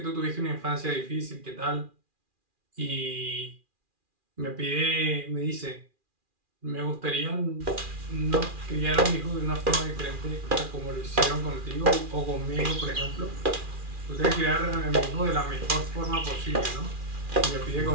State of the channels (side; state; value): left; late; 2.4 ms